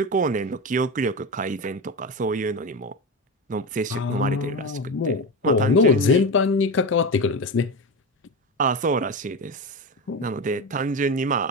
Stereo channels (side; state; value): both; normal; correlation 0.20